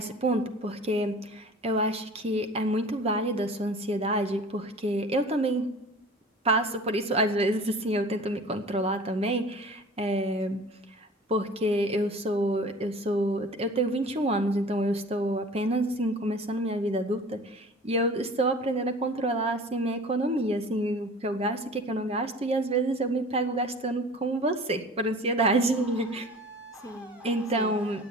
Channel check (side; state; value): both; normal; correlation 0.42